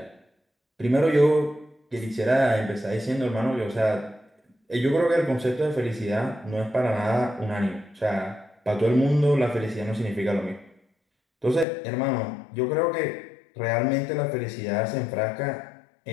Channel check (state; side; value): drops out; right; at 11.7 s